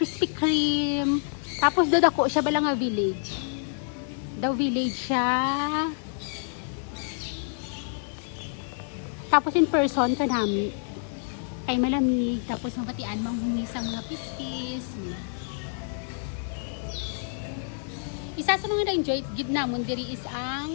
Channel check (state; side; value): silent; right; digital silence